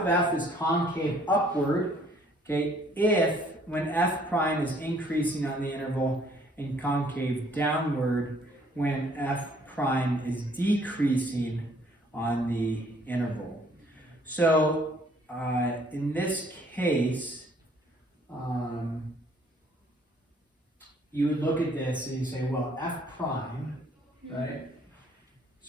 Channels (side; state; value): both; normal; correlation 0.61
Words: f is concave upward, okay, if when f prime is increasing on the interval, and concave downward when f prime is decreasing on the interval. So in this case, you would look at this and you say, well, f prime, right?